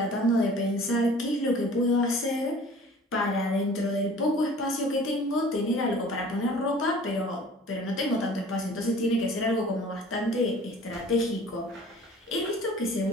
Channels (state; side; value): normal; both; correlation 0.47